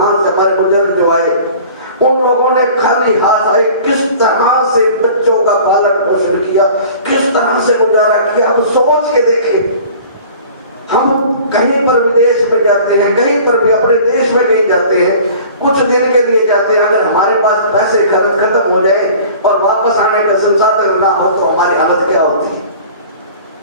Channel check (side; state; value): both; inverted; correlation -0.45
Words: से हमारे बुजुर्ग जो आए उन लोगों ने खाली हाथ आए किस तरह से बच्चों का पालन पोषण किया, किस तरह से गुजारा किया। अब सोच के देखें, हम कहीं पर विदेश में जाते हैं, कहीं पर भी अपने देश में कहीं जाते हैं, कुछ दिन के लिए जाते हैं, अगर हमारे पास पैसे खत्म हो जाए और वापस आने का संसाधन ना हो तो हमारी हालत क्या होती है।